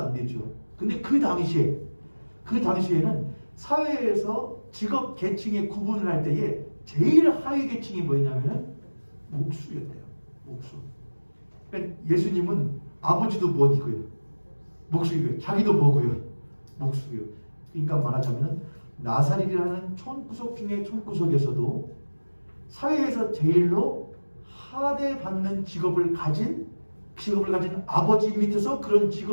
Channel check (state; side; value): inverted; both; correlation -1.00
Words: 되죠. 근데 그 당시에는 사회에서 직업 계층의 구분을 할 때에 제일 하위 계층이 뭐였냐면은 목수였대요. 목수. 그러니까 예수님은 아버지도 뭐이고요? 목수이고요. 자기도 뭐고요? 목수고요. 그러니까 말하자면은 나사렛이라는 촌구석 중에 촌구석에서도 사회에서 제일로 하대받는 직업을 가진 아버지 밑에서 그런